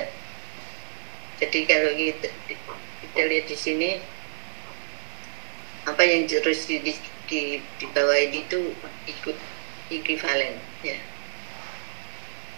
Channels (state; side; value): silent; left; digital silence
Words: Jadi kalau kita lihat di sini apa yang terus di bawah ini itu ikut equivalen ya.